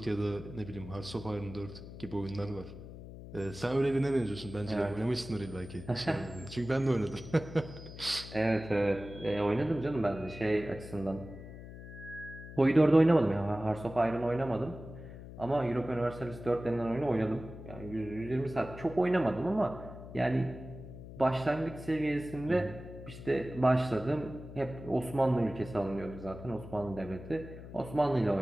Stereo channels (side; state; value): left; noise; hum, 13 dB below the sound